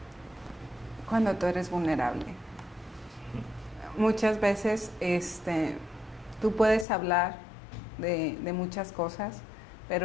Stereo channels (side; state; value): right; drops out; at 6.9 s